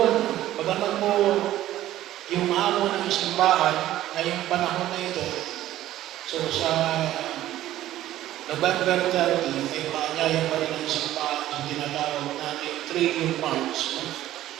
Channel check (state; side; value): quieter; left; 13.8 dB